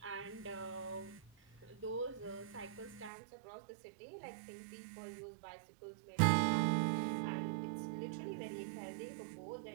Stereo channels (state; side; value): drops out; left; at 3.1 s